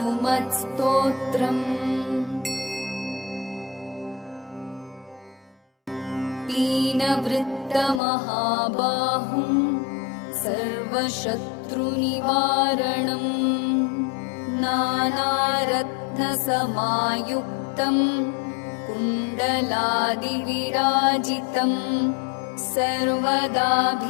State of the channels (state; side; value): drops out; right; at 8.0 s